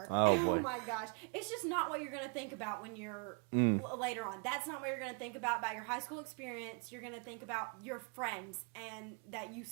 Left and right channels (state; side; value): quieter; left; 39.1 dB